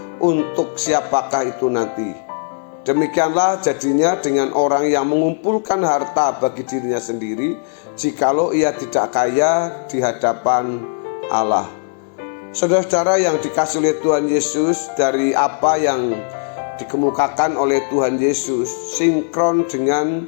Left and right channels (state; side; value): silent; right; digital silence